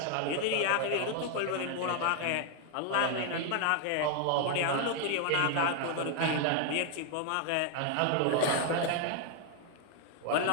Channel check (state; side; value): different; both; correlation 0.00